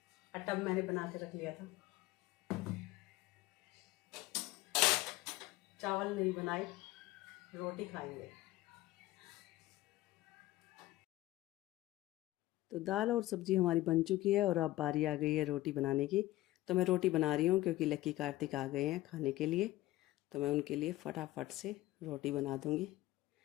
आटा मैंने बना के रख लिया था, चावल नहीं बनाए, रोटी खाएंगे। तो दाल और सब्जी हमारी बन चुकी है और अब बारी आ गई है रोटी बनाने की। तो मैं रोटी बना रही हूँ क्योंकि लक्की कार्तिक आ गए हैं खाने के लिए, तो मैं उनके लिए फटाफट से रोटी बना दूँगी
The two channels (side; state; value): right; quieter; 16.9 dB